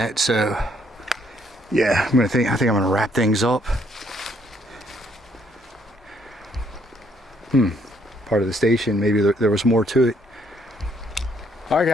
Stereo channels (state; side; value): normal; both; correlation 0.69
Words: so yeah, I think I'm gonna wrap things up. Part of the station, maybe there was more to it. All right,